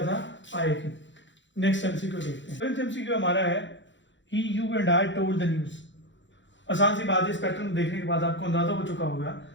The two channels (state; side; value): late; right; 0.54 ms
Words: था, आई की। नेक्स्ट एमसीक्यू देखते हैं। फिफ्थ एमसीक्यू हमारा है, he you and I told the news. आसान सी बात है, इस पैटर्न को देखने के बाद आपको अंदाजा हो चुका होगा